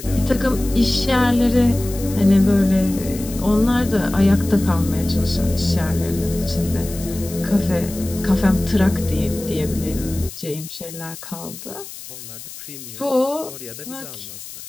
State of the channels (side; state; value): left; noise; hiss, 13 dB below the sound